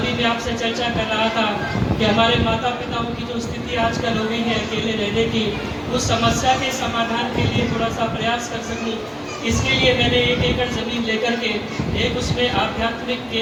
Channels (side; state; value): both; identical; correlation 1.00